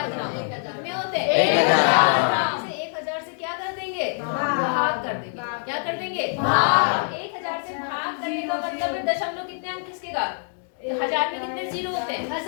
ग्राम में होते हैं। 1000 से 1000 से क्या कर देंगे? भाग कर देंगे। क्या कर देंगे? भाग। 1000 से भाग करने का मतलब है दशमलव कितने अंक खिसकेगा? 1000 में कितने जीरो होते हैं?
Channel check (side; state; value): right; silent; 62 dB below the other